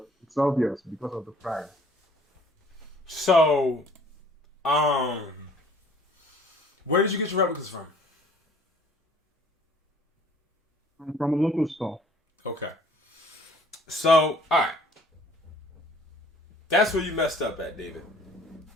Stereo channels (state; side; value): normal; both; correlation 0.54